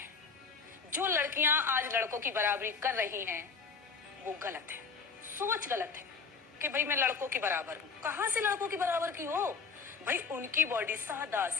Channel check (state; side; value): quieter; right; 5.3 dB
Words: जो लड़कियां आज लड़कों की बराबरी कर रही हैं वो गलत है, सोच गलत है कि भाई मैं लड़कों के बराबर हूँ। कहाँ से लड़कों की बराबर की हो? भाई उनकी बॉडी सादा